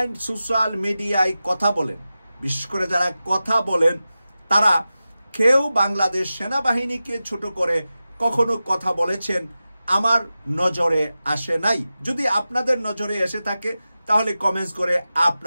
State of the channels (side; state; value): both; inverted; correlation -0.94